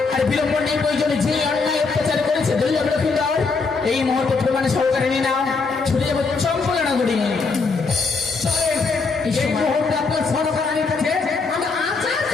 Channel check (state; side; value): quieter; right; 4.4 dB